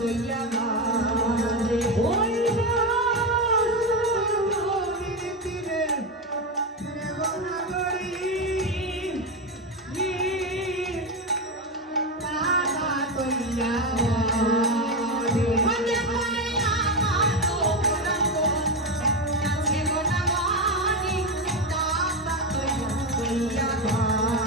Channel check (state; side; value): normal; both; correlation 0.13